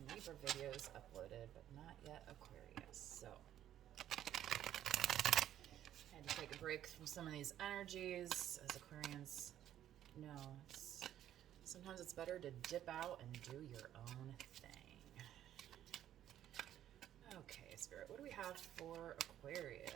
Libra videos uploaded, but not yet Aquarius. So I had to take a break from some of these energies, as Aquarians know. Sometimes it's better to dip out and do your own thing. Okay, Spirit, what do we have for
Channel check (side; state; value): left; quieter; 11.5 dB